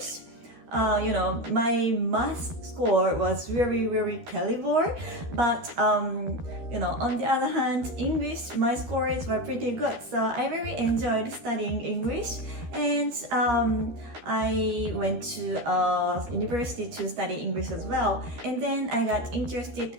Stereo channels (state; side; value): late; left; 13 ms